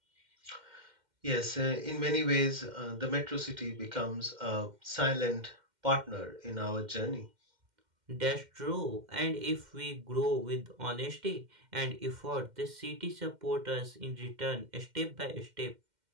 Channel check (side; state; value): left; late; 2.1 ms